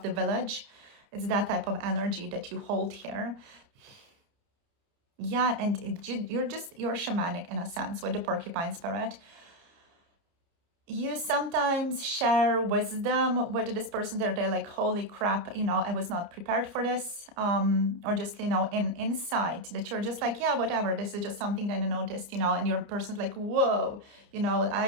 the village. It's that type of energy that you hold here. Yeah, and you're shamanic in a sense with the porcupine spirit. you sometimes share wisdom with this person. They're like, holy crap, you know, I was not prepared for this. Or just, you know, in insight that you're just like, yeah, whatever, this is just something that I noticed, you know, and your person's like, whoa, you know,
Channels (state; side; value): late; left; 29 ms